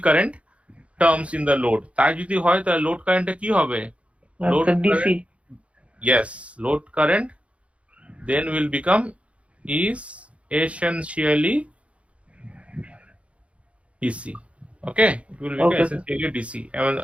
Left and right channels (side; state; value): left; late; 0.062 ms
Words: current terms in the load. তাই যদি হয় তাহলে load কারেন্টটা কি হবে? Load আচ্ছা DC. current, yes, load current then will become is essentially DC. Okay, it will become Okay, sir. essentially DC. এবং